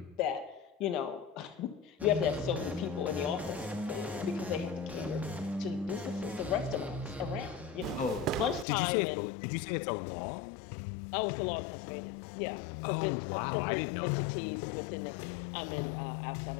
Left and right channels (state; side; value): drops out; right; at 8.7 s